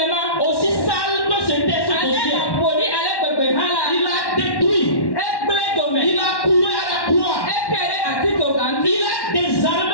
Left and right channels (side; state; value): right; late; 1.1 ms